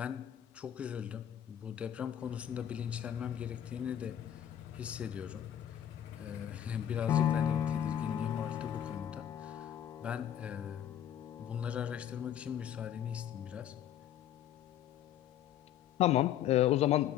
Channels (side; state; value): right; quieter; 10.5 dB